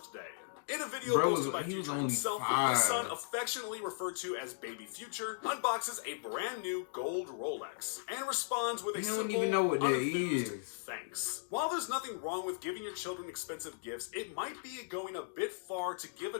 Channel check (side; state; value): right; silent; digital silence